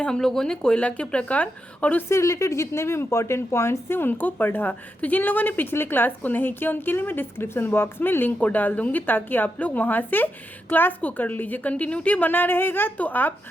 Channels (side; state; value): both; normal; correlation 0.85